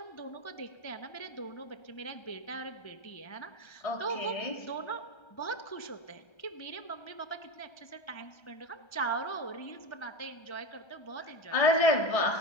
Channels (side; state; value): right; late; 1.3 ms